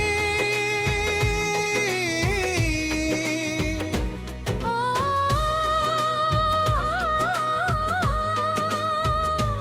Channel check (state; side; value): identical; both; correlation 1.00